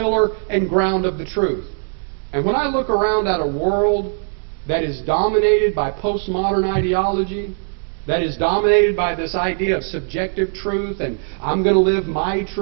and ground of the truth. And when I look around at a world that is dominated by postmodern ideology, that is dominated by this idea of subjective truth, and I'm going to live my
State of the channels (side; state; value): left; silent; 65 dB below the other